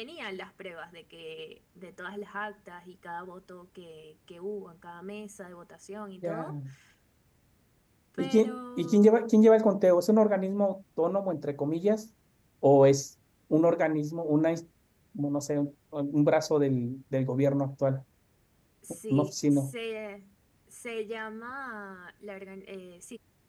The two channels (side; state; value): both; identical; correlation 1.00